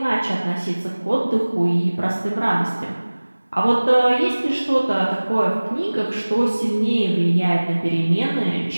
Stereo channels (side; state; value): both; inverted; correlation -1.00